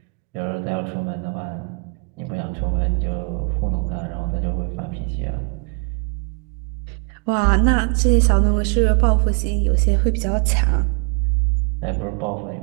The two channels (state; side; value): quieter; left; 36.9 dB